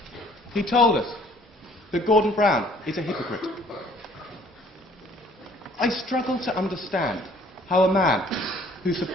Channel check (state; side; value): normal; both; correlation 0.57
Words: He told us that Gordon Brown is a hypocrite. I struggle to understand how a man who